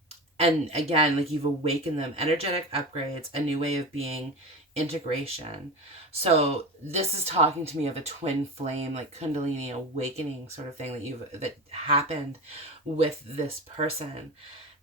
again, you've awakened them. Energetic upgrades, a new way of being, integration. So this is talking to me of a twin flame, Kundalini awakening sort of thing that happened with this person.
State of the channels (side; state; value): both; normal; correlation 0.26